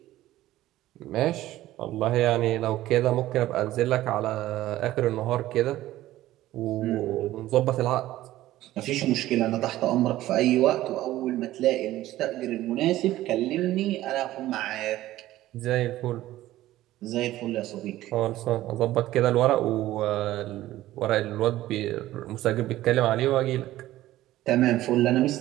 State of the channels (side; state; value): left; quieter; 15.2 dB